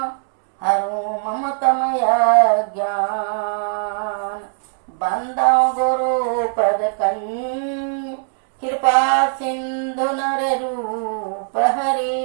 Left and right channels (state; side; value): silent; left; digital silence